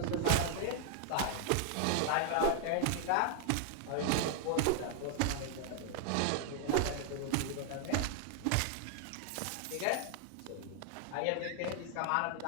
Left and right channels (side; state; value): both; different; correlation 0.00